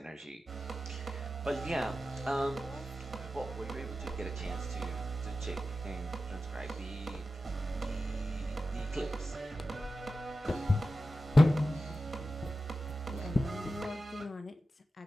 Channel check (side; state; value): both; normal; correlation 0.93